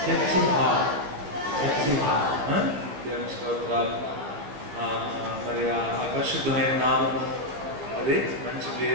church hall, church hall. దేవుని స్తోత్రాలు. మరి ఆ పరిశుద్ధమైన నామము, అదే మంచి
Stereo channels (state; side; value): late; left; 14 ms